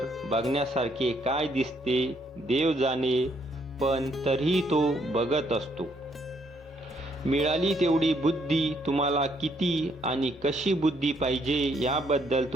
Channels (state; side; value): normal; both; correlation 0.71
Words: बघण्यासारखे काय दिसते देव जाणे, पण तरीही तो बघत असतो. मिळाली तेवढी बुद्धी. तुम्हाला किती आणि कशी बुद्धी पाहिजे याबद्दल